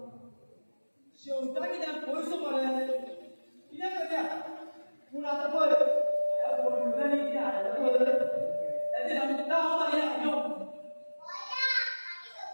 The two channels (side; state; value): both; inverted; correlation -1.00